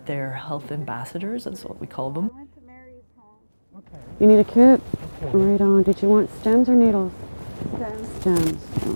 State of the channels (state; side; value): inverted; both; correlation -1.00